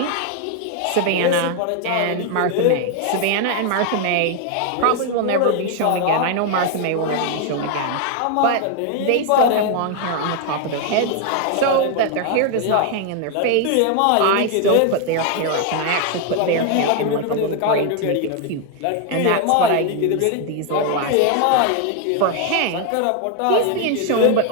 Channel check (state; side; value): different; both; correlation 0.01